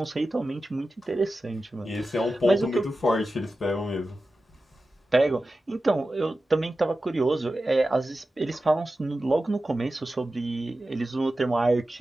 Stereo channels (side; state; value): both; normal; correlation 0.93